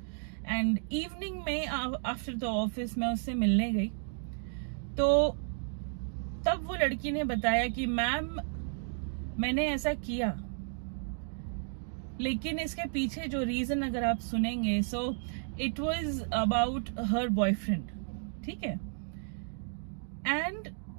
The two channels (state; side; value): silent; left; digital silence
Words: and evening में आफ्टर द ऑफिस मैं उससे मिलने गई। तो तब वो लड़की ने बताया कि मैम मैंने ऐसा किया, लेकिन इसके पीछे जो रीजन अगर आप सुनेंगे, so it was about her boyfriend, ठीक है, and